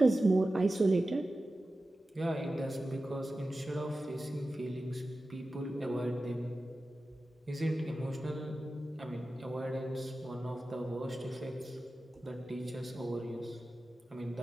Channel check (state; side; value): normal; both; correlation 0.94